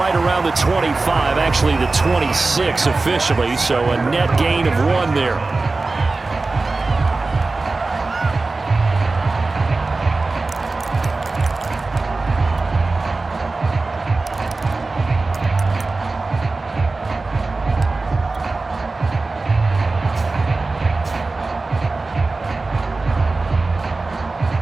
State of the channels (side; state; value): left; quieter; 3.5 dB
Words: around the 25, actually the 26 officially, so a net gain of 1 there.